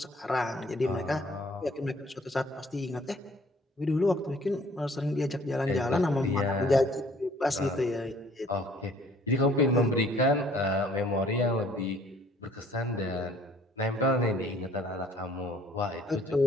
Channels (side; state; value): both; normal; correlation 0.57